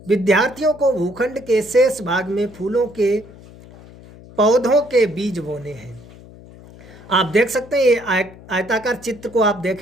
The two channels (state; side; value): noise; left; hum, 20 dB below the sound